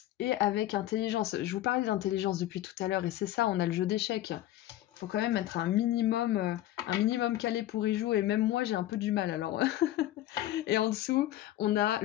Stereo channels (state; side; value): quieter; right; 14.1 dB